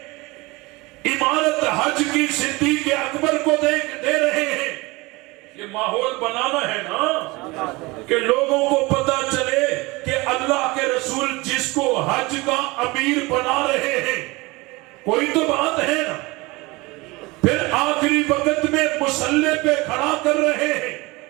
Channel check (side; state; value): left; quieter; 23.4 dB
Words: عمارت حج کی صدیق اکبر کو دے رہے ہیں۔ یہ ماحول بنانا ہے نا کہ لوگوں کو پتا چلے کہ اللہ کے رسول جس کو حج کا امیر بنا رہے ہیں، کوئی تو بات ہے نا۔ پھر آخری وقت میں مصلی پہ کھڑا کر رہے ہیں